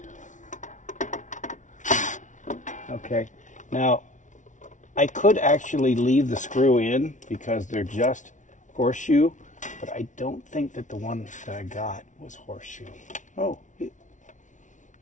okay, now I could actually leave the screw in because they're just horseshoe, but I don't think that the one that I got was horseshoe. Oh,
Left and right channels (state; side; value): late; right; 0.37 ms